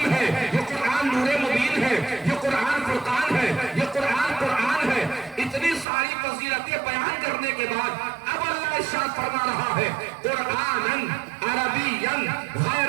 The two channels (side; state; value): left; drops out; at 5.9 s